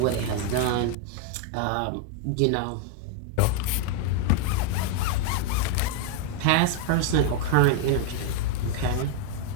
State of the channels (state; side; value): different; both; correlation 0.01